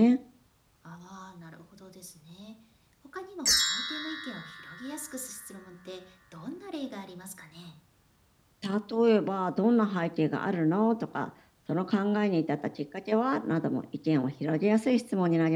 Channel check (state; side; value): identical; both; correlation 1.00